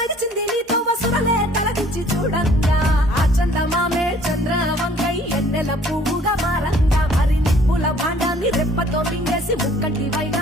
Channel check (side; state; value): both; normal; correlation 0.56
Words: నీతో వసురలే తలదించి చూడంగా ఆ చందమామే చంద్రవంకై ఎన్నెల పువ్వుగా మారంగా మరి నిప్పుల భాండాన్ని రెప్పతో మింగేసి ముక్కంటి